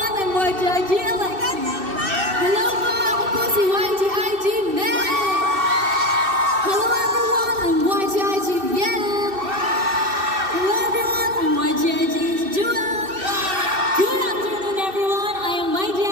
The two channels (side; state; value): left; late; 2.6 ms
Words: I'm YGIT Alexi. Hello po, ako po si YGIT Meg. Hello everyone, I'm YGIT Yen. Hello everyone, I'm YGIT Jewel. Good afternoon everyone, I am